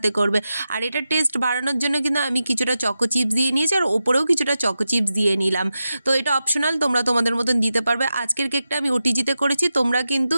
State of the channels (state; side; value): inverted; both; correlation -0.91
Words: করবে। আর এটা টেস্ট বাড়ানোর জন্য কিন্তু আমি কিছুটা চকো চিপস দিয়ে নিয়েছি, আর ওপরেও কিছুটা চকো চিপস দিয়ে নিলাম। তো এটা অপশনাল, তোমরা তোমাদের মতন দিতে পারবে। আজকের কেকটা আমি ওটিজিতে করেছি, তোমরা কিন্তু